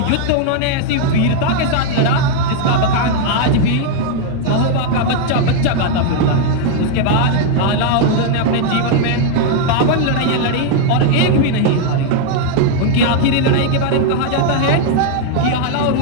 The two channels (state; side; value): different; both; correlation 0.00